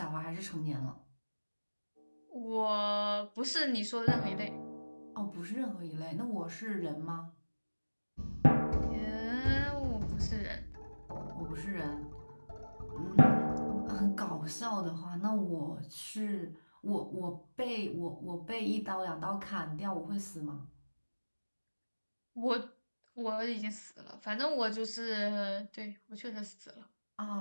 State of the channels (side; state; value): both; inverted; correlation -1.00